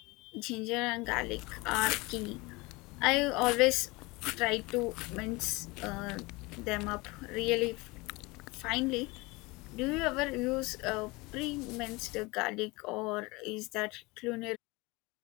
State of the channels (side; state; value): right; quieter; 24.0 dB